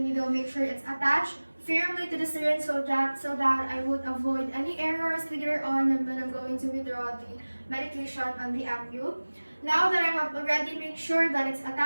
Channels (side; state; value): both; inverted; correlation -1.00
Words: needle. Make sure it's attached firmly to the syringe so that I would avoid any errors later on when I'm going to withdraw the medication on the ampule. Now that I have already made sure that it's